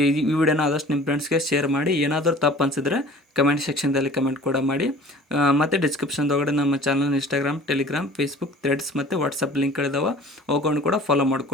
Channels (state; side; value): normal; both; correlation 0.46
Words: ವಿಡಿಯೋನ ಆದಷ್ಟು ನಿಮ್ಮ ಫ್ರೆಂಡ್ಸ್ಗೆ ಶೇರ್ ಮಾಡಿ. ಏನಾದರೂ ತಪ್ಪು ಅನಿಸಿದ್ರೆ ಕಮೆಂಟ್ ಸೆಕ್ಷನ್ದಲ್ಲಿ ಕಮೆಂಟ್ ಕೂಡ ಮಾಡಿ. ಮತ್ತು ಡಿಸ್ಕ್ರಿಪ್ಷನ್ದೊಳಗಡೆ ನಮ್ಮ channel Instagram, Telegram, Facebook, Threads ಮತ್ತು ವಾಟ್ಸಪ್ ಲಿಂಕ್ಗಳಿದಾವೆ. ಅವುಗಳನ್ನು ಕೂಡ ಫಾಲೋ